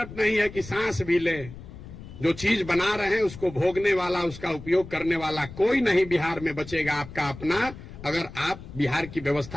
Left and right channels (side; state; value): left; noise; rumble, 14 dB below the sound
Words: नहीं है कि सांस भी ले। जो चीज बना रहे हैं उसको भोगने वाला, उसका उपयोग करने वाला कोई नहीं बिहार में बचेगा आपका अपना, अगर आप बिहार की